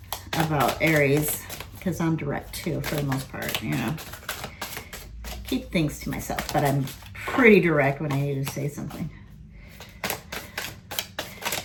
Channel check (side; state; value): both; identical; correlation 1.00